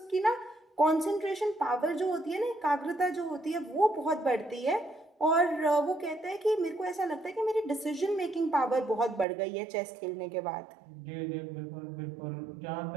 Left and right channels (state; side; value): drops out; left; at 9.2 s